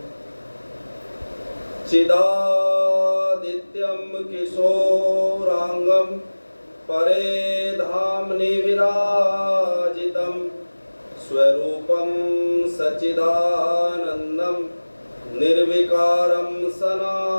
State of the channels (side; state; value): both; inverted; correlation -1.00